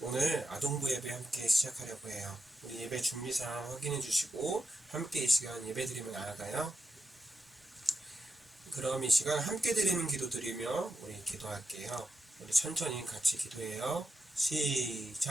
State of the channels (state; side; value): normal; both; correlation 0.87